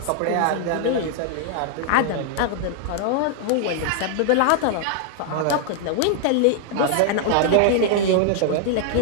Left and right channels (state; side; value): different; both; correlation 0.00